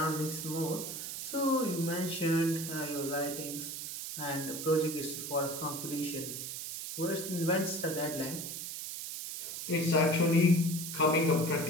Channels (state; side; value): noise; right; hiss, 6 dB below the sound